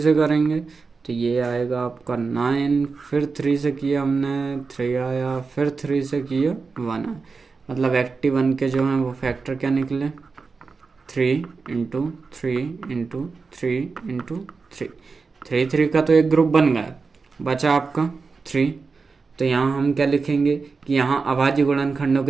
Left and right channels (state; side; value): quieter; left; 4.6 dB